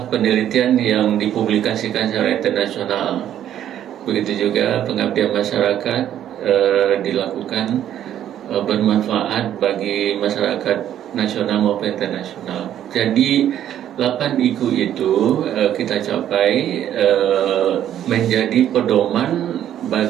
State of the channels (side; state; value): left; quieter; 10.9 dB